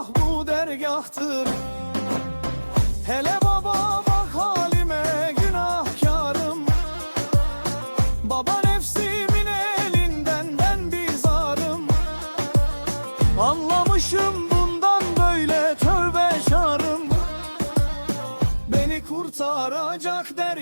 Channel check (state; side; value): inverted; both; correlation -1.00